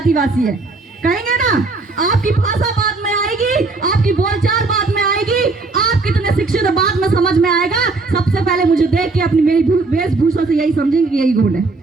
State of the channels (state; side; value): quieter; left; 3.7 dB